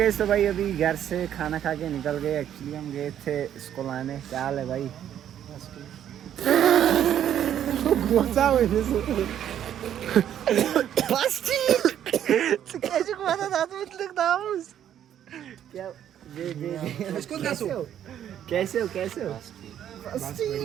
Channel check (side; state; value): left; quieter; 10.3 dB